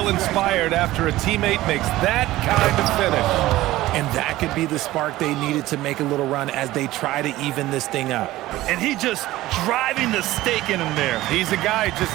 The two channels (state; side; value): quieter; left; 16.6 dB